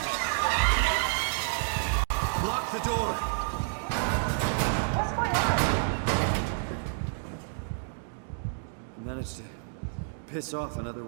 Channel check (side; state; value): left; silent; digital silence